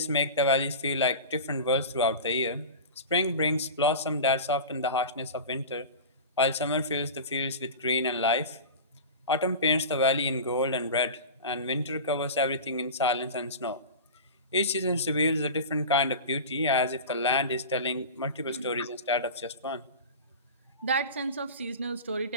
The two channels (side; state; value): both; inverted; correlation -0.30